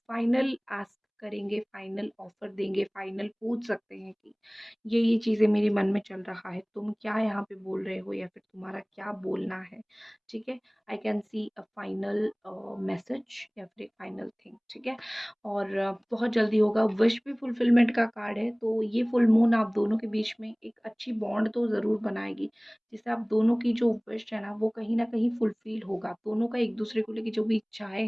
फाइनल आस्क करेंगे, फाइनल ऑफ़र देंगे, फाइनल पूछ सकते हैं कि ये चीज़ें मेरे मन में चल रहा है, तुम क्या यहाँ पे बोल रहे हो या फिर तुम्हारा क्या बोलना है, ठीक है? I can see a final message या फिर एक फाइनल थिंग, ठीक है? और बहुत जल्दी होगा। विश भी फुलफिलमेंट का कार्ड है, तो ये फुल मून आप दोनों के बीच में एक अच्छी बॉन्ड तो ज़रूर बनाएगी, जिससे आप दोनों की जो विश है ना, वो कहीं न कहीं फुलफ़िल होगा। दोनों का एक-दूसरे को लेके जो भी इच्छाएँ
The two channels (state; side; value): identical; both; correlation 1.00